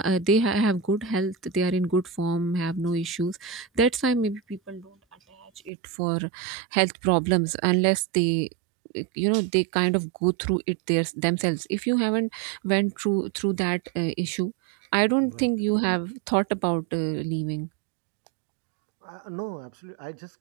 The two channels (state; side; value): drops out; left; at 5.7 s